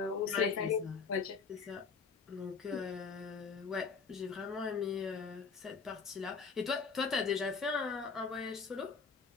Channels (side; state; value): right; quieter; 5.3 dB